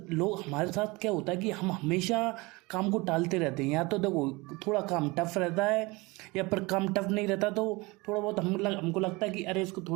लोग हमारे साथ क्या होता है कि हम हमेशा काम को टालते रहते हैं। या तो देखो थोड़ा काम टफ रहता है या फिर काम टफ नहीं रहता तो थोड़ा बहुत हमको लगता है कि अरे इसको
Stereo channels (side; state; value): left; quieter; 24.2 dB